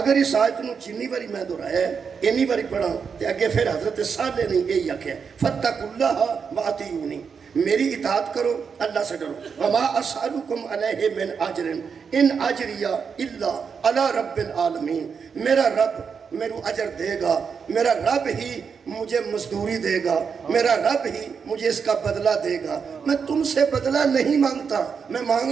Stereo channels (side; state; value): left; quieter; 6.1 dB